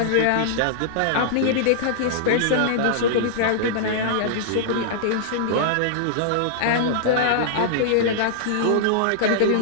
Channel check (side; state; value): both; different; correlation -0.01